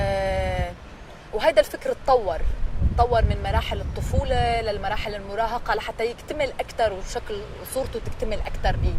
وهذا الفكر تطور من مراحل الطفولة للمراحل المراهقة لحتى يكتمل أكثر وشكل صورته تكتمل أكثر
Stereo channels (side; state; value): both; identical; correlation 1.00